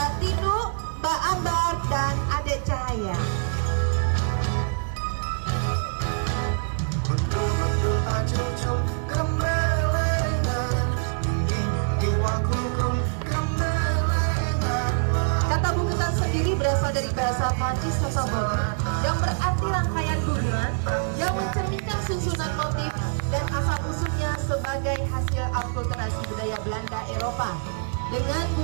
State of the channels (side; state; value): left; silent; digital silence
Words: Tinu, Mbak Ambar, dan Adek Cahaya. Kata bungkusan sendiri berasal dari bahasa Prancis Sasamone yang berarti rangkaian bunga yang mencerminkan susunan motif dan asal-usulnya sebagai hasil akulturasi budaya Belanda Eropa dengan